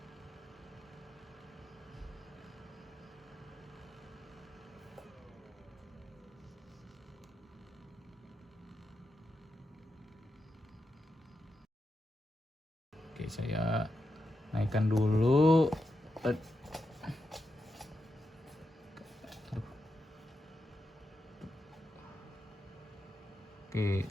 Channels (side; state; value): both; normal; correlation 0.87